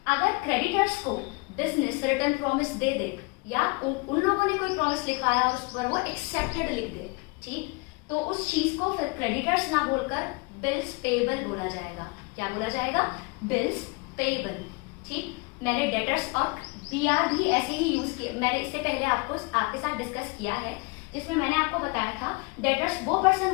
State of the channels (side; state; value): right; quieter; 27.9 dB